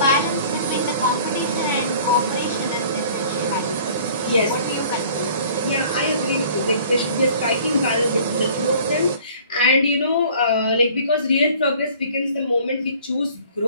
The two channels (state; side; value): inverted; both; correlation -0.51